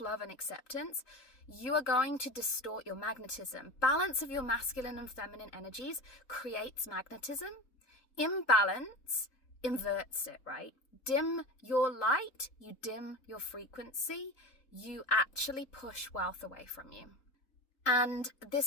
and acceptance, you are going to distort your magnetism. Balance of your masculine and feminine energies creates magnetism. Imbalance inverts it, right? Dim your light, you dim your frequency, you actually push wealth away from you. And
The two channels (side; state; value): right; late; 3.8 ms